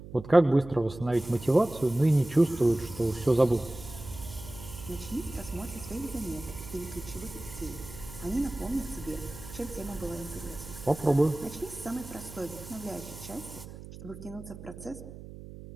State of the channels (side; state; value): right; noise; hum, 14 dB below the sound